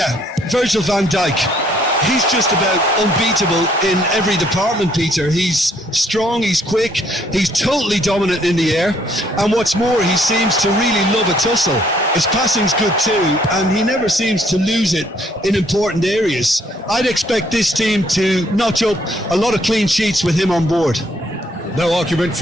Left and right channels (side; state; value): both; normal; correlation 0.66